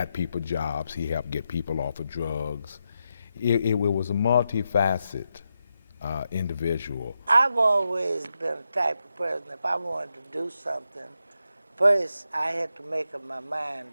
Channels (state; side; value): inverted; both; correlation -0.86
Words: people jobs. He helped get people off of drugs. It was a multifaceted individual. I've always been the type of person, if I wanted to do something, first I had to make up my mind